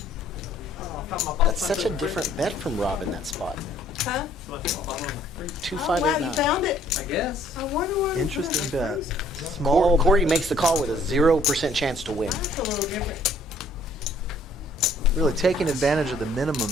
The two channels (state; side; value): normal; both; correlation 0.60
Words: That's such a different bet from Rob in that spot. Huh? 2, Oh, 5, wow, 8, you 9. found it? I guess. I wonder where you Interesting found it. bet. That's Small. Corey makes the call with a 0% chance to win. a little different. Really taking advantage of the minimum